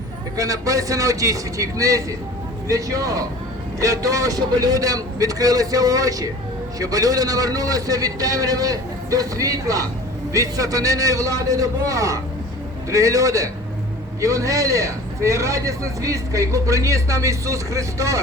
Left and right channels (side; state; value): both; normal; correlation 0.42